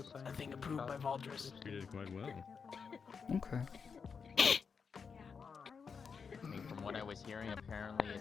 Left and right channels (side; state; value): right; quieter; 5.8 dB